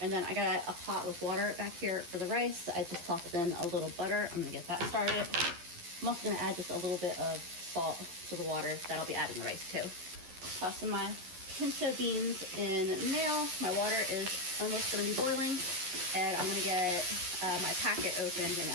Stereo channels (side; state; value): left; late; 11 ms